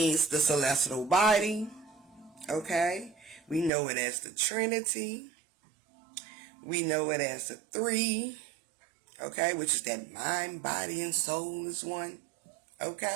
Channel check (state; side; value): drops out; left; at 3.7 s